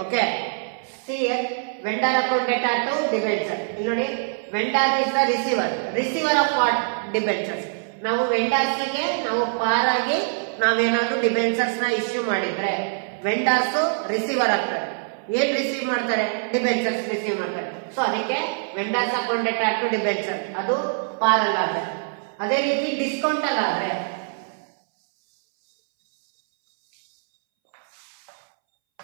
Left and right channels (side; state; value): left; silent; 63 dB below the other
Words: okay see here vendor account data to debenture ಇಲ್ಲಿ ನೋಡಿ vendor is the receiver of what debentures ನಾವು vendors ಗೆ ನಾವು ಪಾರ್ ಆಗಿ ನಾವೇನಾದ್ರೂ debentures ನ issue ಮಾಡಿದ್ರೆ ವೆಂಡರ್ಸ್ ರಿಸೀವರ್ ಆಗ್ತಾರೆ ಏನ್ ರಿಸೀವ್ ಮಾಡ್ತಾರೆ ಡಿಬೆಂಚರ್ಸ್ ರಿಸೀವ್ ಮಾಡ್ತಾರೆ ಸೊ ಅದಕ್ಕೆ vendors account data to debenture ಅದು ಪಾರ್ ಅಲ್ಲಾದ್ರೆ ಅದೇ ರೀತಿ ಡಿಸ್ಕೌಂಟ್ ಅಲ್ಲಾದ್ರೆ